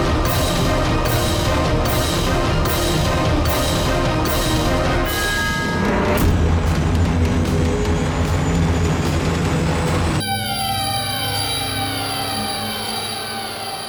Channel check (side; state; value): both; identical; correlation 1.00